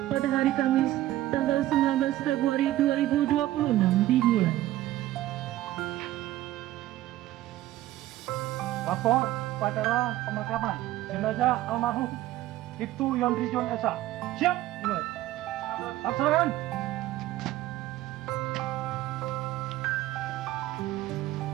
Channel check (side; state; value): left; quieter; 15.0 dB